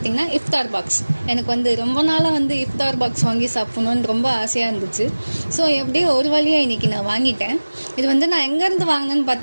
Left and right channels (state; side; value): inverted; both; correlation -1.00